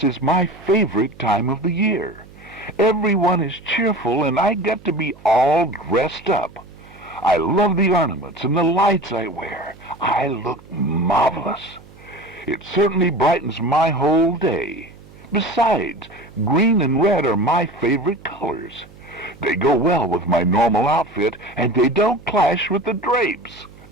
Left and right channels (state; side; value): noise; right; hum, 22 dB below the sound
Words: is my favorite time of the year. Everyone is cheerful and I get to be all dressed up. I love the ornaments and the lights I wear. I look marvelous. It certainly brightens my whole day. Besides, green and red are my favorite colors. They go well with my normal outfit, and they don't clash with the drapes.